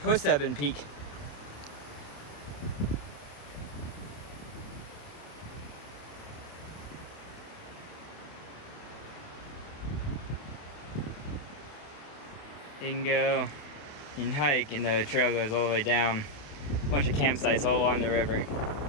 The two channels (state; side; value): late; right; 28 ms